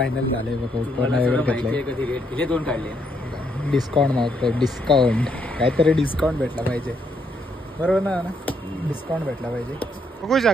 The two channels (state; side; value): normal; both; correlation 0.74